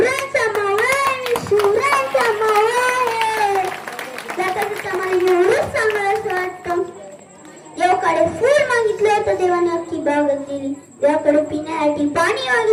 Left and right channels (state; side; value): identical; both; correlation 1.00